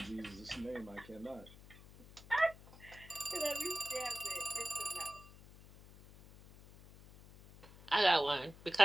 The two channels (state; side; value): noise; left; hum, 20 dB below the sound